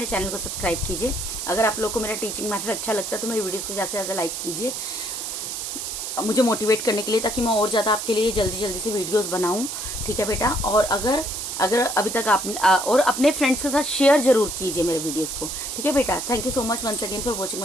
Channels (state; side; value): noise; right; hiss, 5 dB below the sound